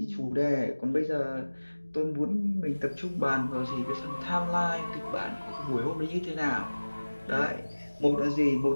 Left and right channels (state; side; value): inverted; both; correlation -1.00